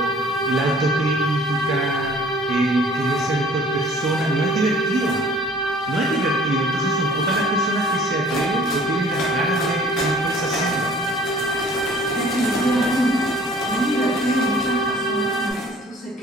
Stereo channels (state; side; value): normal; both; correlation 0.52